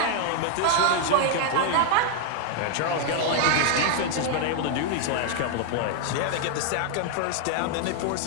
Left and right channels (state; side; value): different; both; correlation 0.00